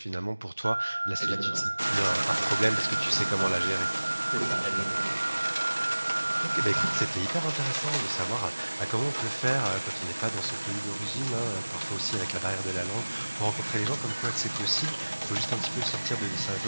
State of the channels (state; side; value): inverted; both; correlation -1.00